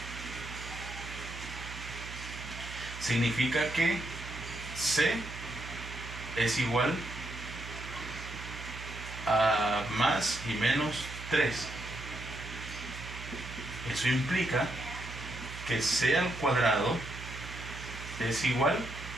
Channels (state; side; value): noise; right; hum, 11 dB below the sound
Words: significa que C es igual a más y menos 3. Eso implica que C al cuadrado es igual